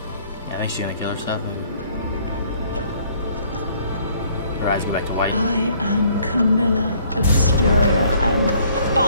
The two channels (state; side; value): inverted; both; correlation -0.61